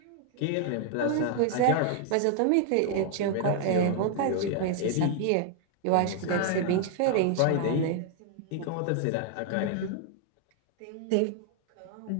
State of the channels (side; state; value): both; different; correlation 0.00